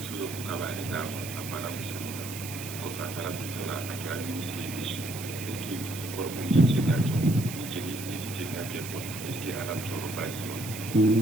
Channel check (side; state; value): right; noise; hiss, 10 dB below the sound